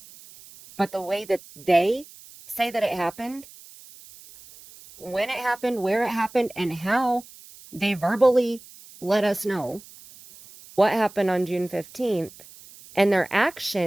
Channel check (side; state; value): right; noise; hiss, 21 dB below the sound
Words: But the way that they say that it happened, when it happened, where it happened, and how they verbally let us know what happened on June 15th, and their